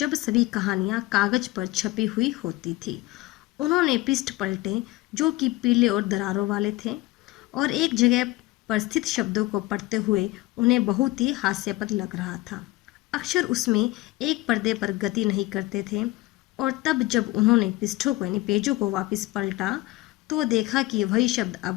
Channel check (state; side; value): quieter; right; 19.0 dB